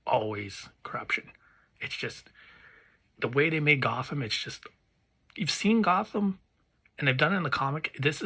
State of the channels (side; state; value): both; identical; correlation 1.00